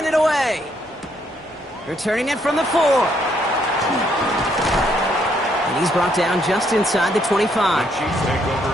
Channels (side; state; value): both; normal; correlation 0.71